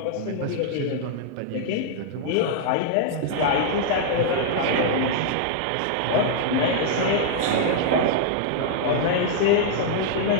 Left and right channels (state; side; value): different; both; correlation -0.01